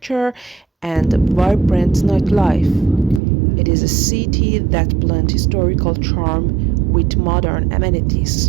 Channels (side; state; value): left; drops out; at 3.2 s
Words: and vibrant nightlife. It is a city that blends historical charm with modern amenities.